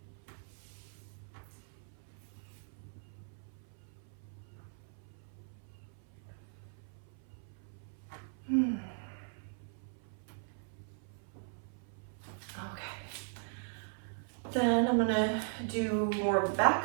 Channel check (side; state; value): left; silent; 52 dB below the other